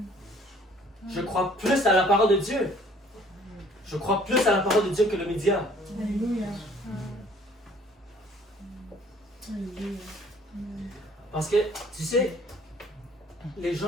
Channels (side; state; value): both; normal; correlation 0.56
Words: Je crois plus à la parole de Dieu. Je crois plus à la parole de Dieu que le média. Alléluia. Parce que, tu sais, les